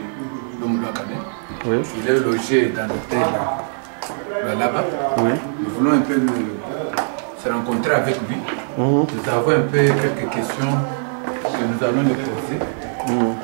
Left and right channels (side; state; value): left; silent; 65 dB below the other